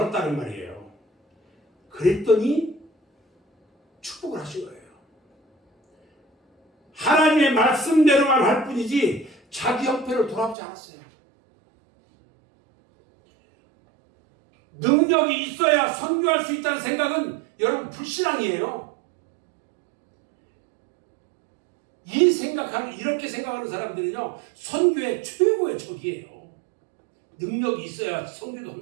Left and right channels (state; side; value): drops out; left; at 10.6 s